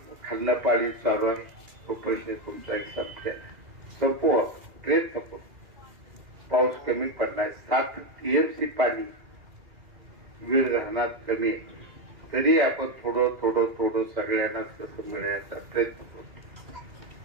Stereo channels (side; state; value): left; late; 2.4 ms